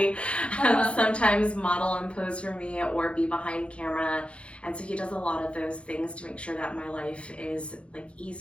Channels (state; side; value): late; right; 0.060 ms